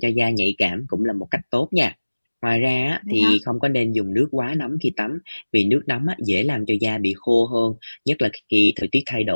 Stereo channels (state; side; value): inverted; both; correlation -1.00